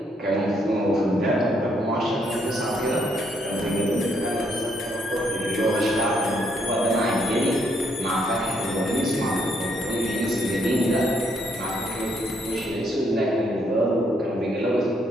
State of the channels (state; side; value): normal; both; correlation 0.72